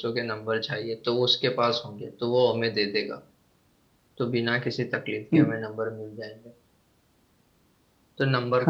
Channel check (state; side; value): identical; both; correlation 1.00